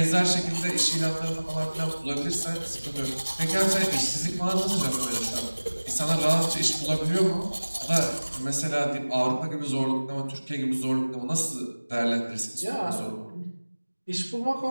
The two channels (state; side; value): inverted; both; correlation -1.00